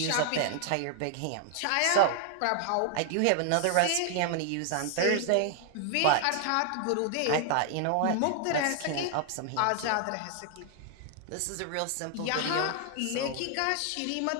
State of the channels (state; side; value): different; both; correlation 0.00